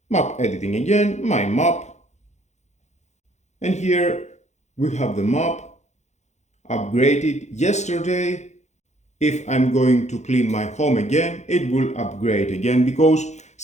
Map editing again, my map. And here we have the map upgraded yesterday. If I'm going to clean my home again, it will upgrade again because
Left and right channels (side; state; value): right; late; 0.33 ms